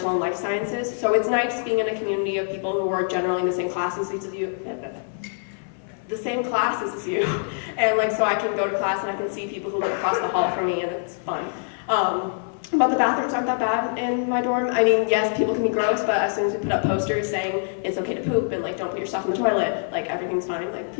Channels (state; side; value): silent; right; 57 dB below the other